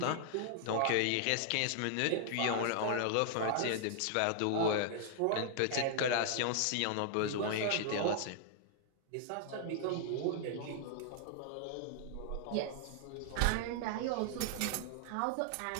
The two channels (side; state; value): both; different; correlation -0.01